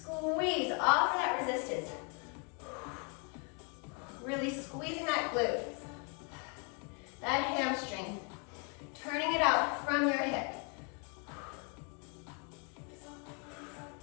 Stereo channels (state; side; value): quieter; right; 35.3 dB